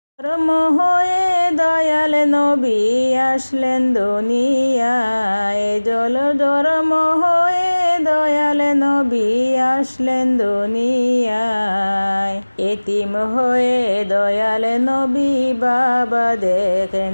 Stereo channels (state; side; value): inverted; both; correlation -1.00